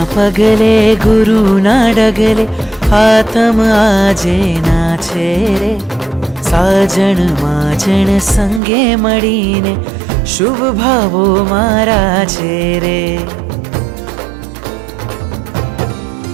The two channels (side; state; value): left; drops out; at 8.6 s